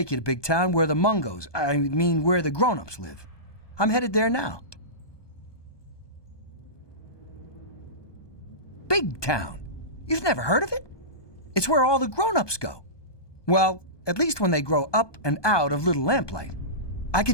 you to Big Town where the Mungos, where the grown-ups live. I'm headed there now. Big Town? You've never heard of it? It's where all the grown-ups go. Well, at least when they grow up and out of Little Lamplight. I can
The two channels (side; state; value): right; late; 1.2 ms